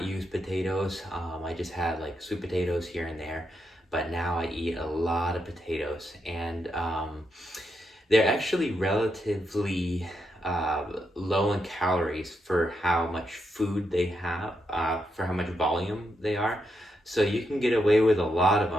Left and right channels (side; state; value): both; normal; correlation 0.82